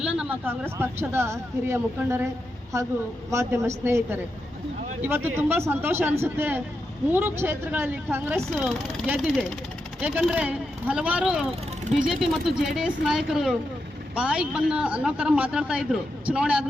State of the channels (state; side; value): normal; both; correlation 0.86